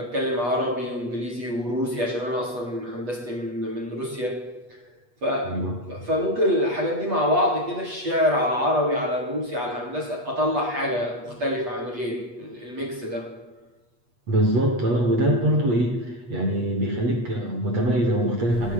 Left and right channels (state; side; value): late; left; 8.3 ms